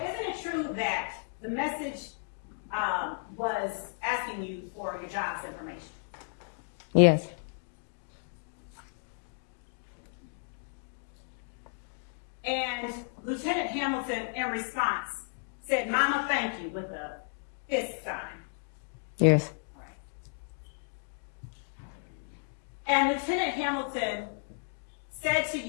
isn't it true that the message was asking you for your job's information? Yes. And Lieutenant Hamilton, in response, said, "Mama, thank you," with a fist sign. Yes. And Lieutenant Hamilton said to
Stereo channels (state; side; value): silent; right; digital silence